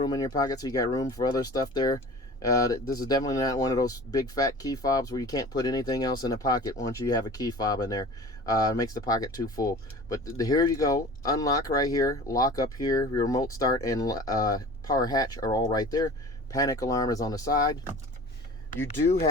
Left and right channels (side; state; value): both; normal; correlation 0.40